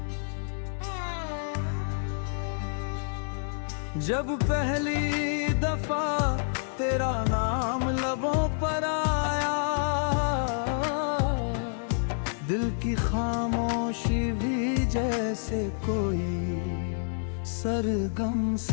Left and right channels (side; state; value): right; silent; digital silence